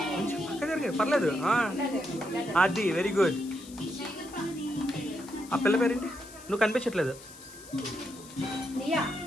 పక్క జరిగే పర్లేదు. అది వెరీ గుడ్. ఆ పిల్ల పేరేంటి? నువ్వు కనిపించట్లేదు.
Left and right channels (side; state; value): left; noise; hiss, 18 dB below the sound